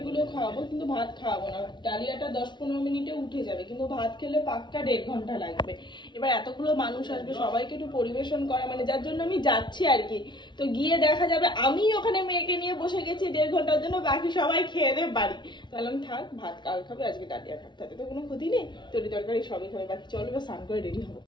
গুলো খাওয়াবো, কিন্তু ভাত খাওয়াবো না। ডালিয়াটা 10-15 মিনিটে উঠে যাবে, কিন্তু ভাত খেলে পাক্কা 1.5 ঘন্টা লাগবে। এবার এতগুলো মানুষ আসবে, সবাইকে একটু পরিবেশন করা, মানে যার জন্য আমি যাচ্ছি আর কি। তো গিয়ে দেখা যাবে আমি ওখানে মেয়েকে নিয়ে বসে গেছি 1.5 ঘন্টার জন্য, বাকি সবাই খেয়ে দেবে বাড়ি। তাহলে আমি থাক, ভাত কাল খাবে, আজকে ডালিয়া খাবে, তাতে তো কোনো ক্ষতি নেই। তরি তরকারি সবই খাবে, বাকি চলো বা স্নান করে রেডি হবো।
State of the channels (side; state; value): right; late; 0.22 ms